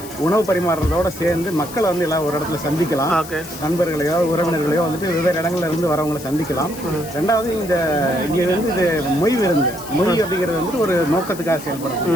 உணவு பரிமாறுறதோடு சேர்ந்து மக்களை வந்து எல்லாம் ஒரு இடத்துல சந்திக்கலாம். நண்பர்களையோ உறவினர்களையோ வந்துட்டு வெவ்வேறு இடங்கள்ல இருந்து வரவங்களை சந்திக்கலாம். ரெண்டாவது இங்கே வந்து இது மொய் விருந்து, மொய் அப்படிங்கிறது வந்துட்டு ஒரு நோக்கத்துக்காக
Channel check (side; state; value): left; noise; hiss, 15 dB below the sound